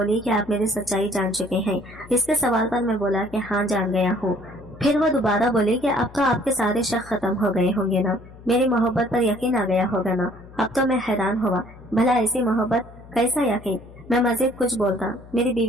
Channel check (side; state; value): left; noise; hum, 20 dB below the sound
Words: کہ آپ میری سچائی جان چکے ہیں۔ اس کے سوال پر میں بولا کہ ہاں جان گیا ہوں۔ پھر وہ دوبارہ بولی کہ اب تو آپ کے سارے شک ختم ہو گئے ہوں گے نا، میری محبت پر یقین آ گیا ہوگا نا۔ اب تو میں حیران ہوا، بھلا ایسی محبت کیسا یقین؟ میں مزید کچھ بولتا، میری